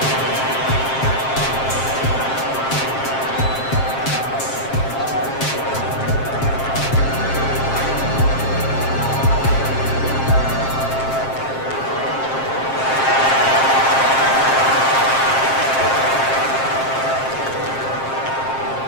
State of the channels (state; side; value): late; right; 7.5 ms